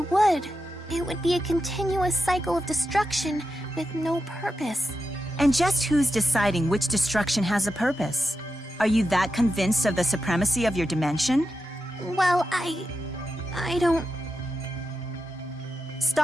It would be a continuous cycle of destruction with no purpose. And just who's deciding which destruction has a purpose? Are you that convinced of the supremacy of your dimension? Well, I don't...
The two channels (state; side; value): normal; both; correlation 0.89